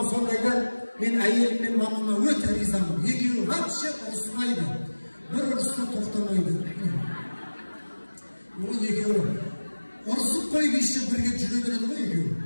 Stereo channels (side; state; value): both; inverted; correlation -1.00